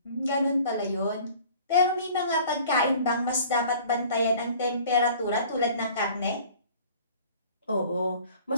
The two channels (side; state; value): both; inverted; correlation -0.49